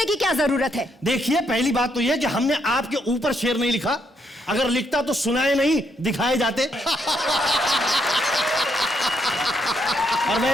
की क्या जरूरत है? देखिए पहली बात तो यह कि हमने आपके ऊपर शेर नहीं लिखा, अगर लिखता तो सुनाए नहीं दिखाए जाते। और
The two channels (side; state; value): both; normal; correlation 0.75